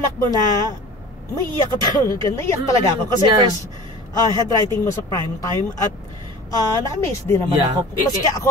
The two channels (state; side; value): normal; both; correlation 0.40